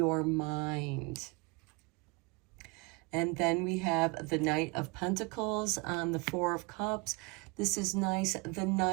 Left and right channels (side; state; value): left; quieter; 28.5 dB